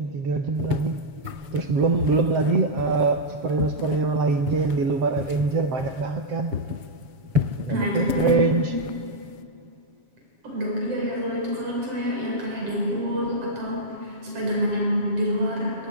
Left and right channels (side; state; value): left; late; 6.9 ms